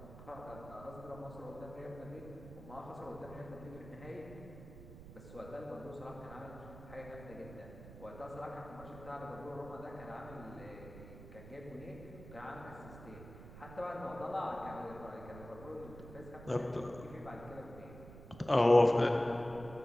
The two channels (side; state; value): right; noise; rumble, 14 dB below the sound